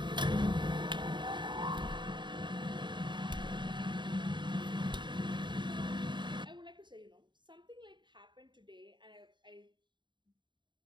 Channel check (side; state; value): left; late; 0.22 ms